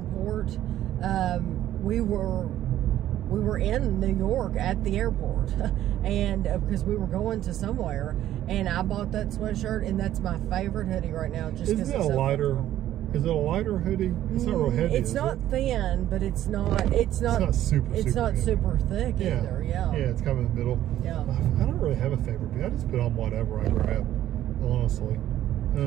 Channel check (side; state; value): left; quieter; 12.6 dB